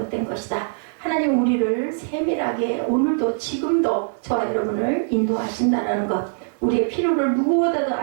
것이다. 하나님은 우리를 세밀하게 오늘도 지금도 저와 여러분을 인도하신다는 것. 우리의 필요를 누구보다도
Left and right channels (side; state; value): left; silent; 64 dB below the other